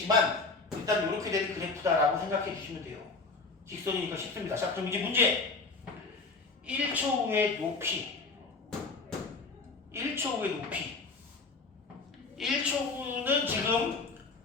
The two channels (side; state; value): right; quieter; 4.0 dB